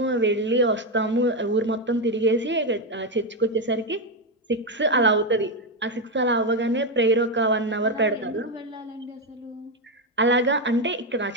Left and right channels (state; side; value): normal; both; correlation 0.07